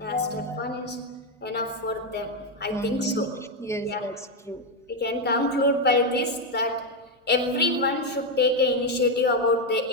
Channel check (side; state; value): both; normal; correlation 0.06